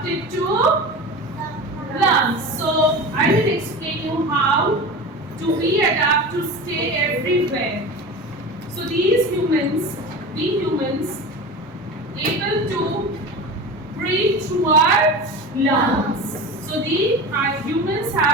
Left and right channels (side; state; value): both; normal; correlation 0.30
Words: to lungs. So I will explain you how do we adapt to stay everywhere. So we humans able to breathe through our lungs. So the humans